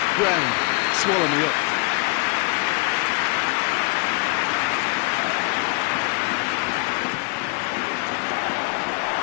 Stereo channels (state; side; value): quieter; right; 28.6 dB